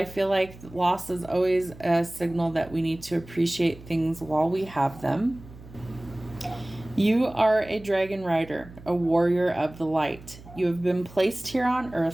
feel like loss is always a signal that we need to appreciate things while we have them. You are a dragon rider, a warrior of the light. You have been placed here on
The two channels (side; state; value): right; noise; hum, 19 dB below the sound